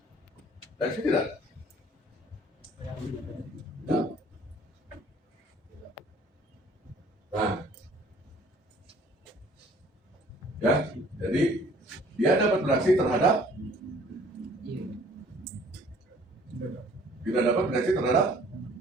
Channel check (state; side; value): normal; both; correlation 0.55